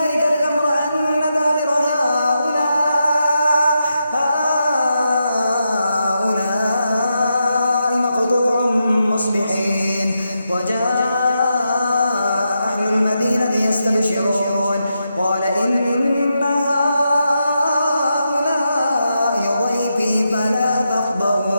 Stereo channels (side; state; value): both; inverted; correlation -0.85